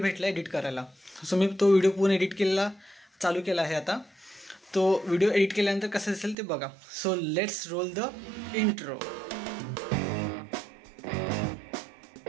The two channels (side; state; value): left; drops out; at 6.4 s